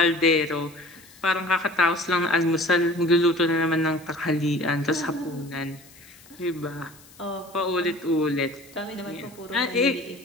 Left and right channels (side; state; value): left; noise; hiss, 24 dB below the sound